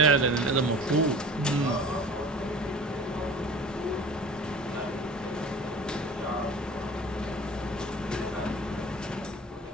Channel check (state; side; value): normal; both; correlation 0.41